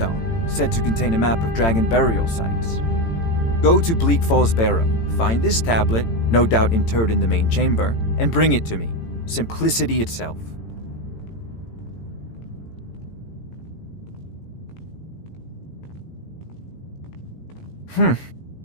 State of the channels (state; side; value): late; right; 18 ms